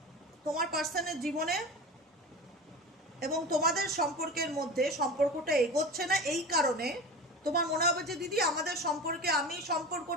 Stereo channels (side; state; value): both; normal; correlation 0.31